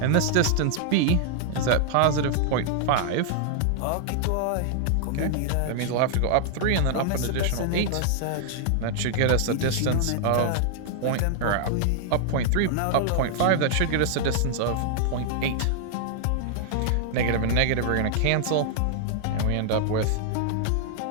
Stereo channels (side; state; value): both; different; correlation -0.01